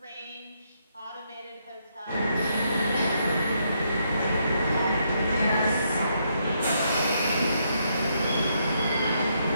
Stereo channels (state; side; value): inverted; both; correlation -0.76